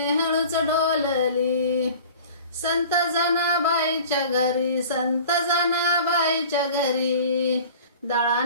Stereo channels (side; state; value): both; inverted; correlation -0.42